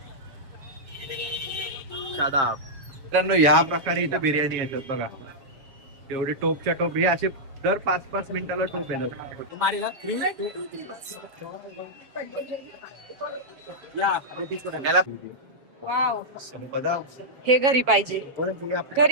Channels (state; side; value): late; left; 7.3 ms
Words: शादाब. मित्रांनो ह्या प्रकारे इथं बिर्याणी येतात बघा. एवढे टोपच्या टोप हे असे दर 5-5 मिनिटाला टोप येतात. याला वाव, हे घरी पाहिजे,